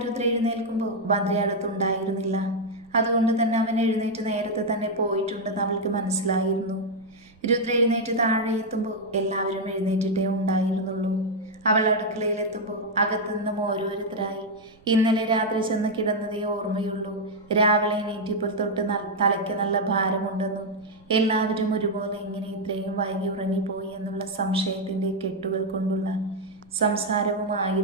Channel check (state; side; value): noise; right; rumble, 29 dB below the sound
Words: രുദ്ര എഴുന്നേൽക്കുമ്പോൾ ഭദ്ര അടുത്തുണ്ടായിരുന്നില്ല. അതുകൊണ്ട് തന്നെ അവൻ എഴുന്നേറ്റ് നേരത്തെ തന്നെ പോയിട്ടുണ്ടെന്ന് അവൾക്ക് മനസ്സിലായിരുന്നു. രുദ്ര എഴുന്നേറ്റ് താഴെ എത്തുമ്പോൾ എല്ലാവരും എഴുന്നേറ്റിട്ടേ ഉണ്ടായിരുന്നുള്ളൂ. അവൾ അടുക്കളയിലെത്തുമ്പോൾ അകത്തുനിന്നും ഓരോരുത്തരായി ഇന്നലെ രാത്രി ചെന്ന് കിടന്നതേ ഓർമ്മയുള്ളൂ. രാവിലെ എണീറ്റപ്പോൾ തൊട്ട് തലയ്ക്ക് നല്ല ഭാരമുണ്ടെന്നും എല്ലാവരും ഒരുപോലെ ഇങ്ങനെ ഇത്രയും വൈകി ഉറങ്ങിപ്പോയി എന്നുള്ള സംശയത്തിൻ്റെ കെട്ടുകൾ കൊണ്ടുള്ള